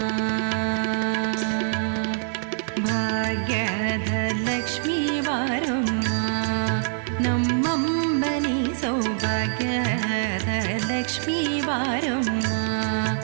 ಭಾಗ್ಯದ ಲಕ್ಷ್ಮೀ ಬಾರಮ್ಮ, ನಮ್ಮಂಬನಿ ಸೌಭಾಗ್ಯದ ಲಕ್ಷ್ಮೀ ಬಾರಮ್ಮ,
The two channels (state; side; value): silent; left; digital silence